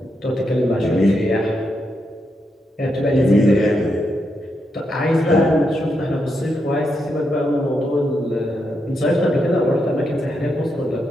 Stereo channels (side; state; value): both; normal; correlation 0.82